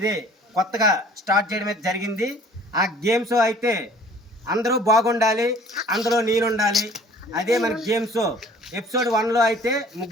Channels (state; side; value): normal; both; correlation 0.52